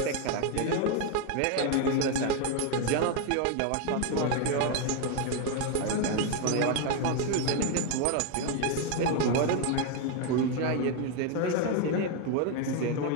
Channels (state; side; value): different; both; correlation 0.01